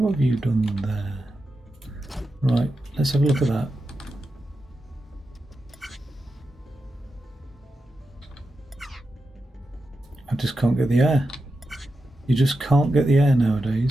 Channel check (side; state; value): both; normal; correlation 0.89